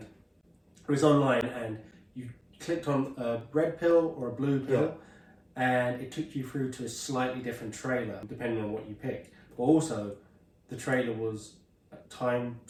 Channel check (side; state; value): both; identical; correlation 1.00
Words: was online, and you clicked on a red pill or a blue pill, and it took you through to a slightly different trailer depending on what you picked. But also, the trailer was time